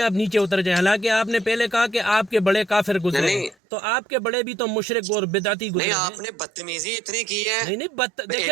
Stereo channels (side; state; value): left; drops out; at 3.6 s